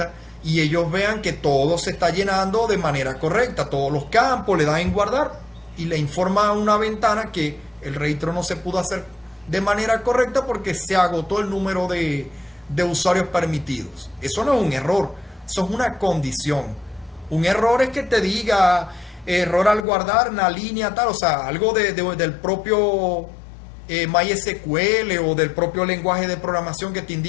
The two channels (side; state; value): right; drops out; at 19.9 s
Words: y ellos vean que todo se está llenando de manera correcta, todos los campos le dan en guardar y le informa a una ventana que el registro no se pudo hacer de manera correcta porque se agotó el número de usuarios permitidos. Eso no es un error, eso es una condición. Un error es que te diga error al guardar una línea tal, o sea, algo del propio MySQL o del propio lenguaje de programación que te